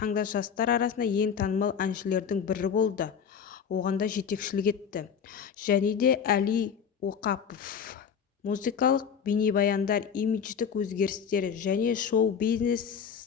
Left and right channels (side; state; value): right; quieter; 7.3 dB